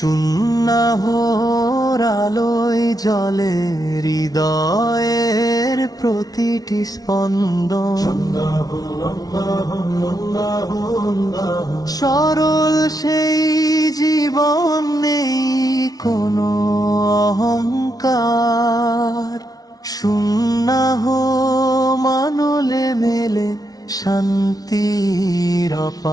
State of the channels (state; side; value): late; right; 0.18 ms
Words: আলোয় জ্বলে হৃদয়ের প্রতিটি স্পন্দন। সরল সেই জীবন, নেই কোনো অহংকার, সুন্নাহ মানলে মেলে শান্তির